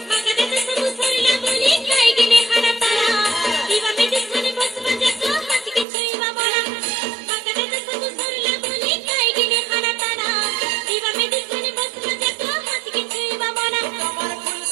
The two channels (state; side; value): drops out; left; at 5.9 s